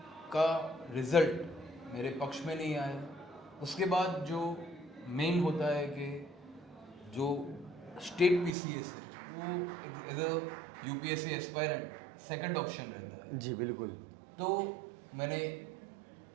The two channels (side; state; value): left; drops out; at 8.6 s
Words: का रिज़ल्ट मेरे पक्ष में नहीं आया। उसके बाद जो मेन होता है कि जो स्टेट पीसीएस है वो as a UPSC aspirant second option रहता है। जी बिल्कुल। तो मैंने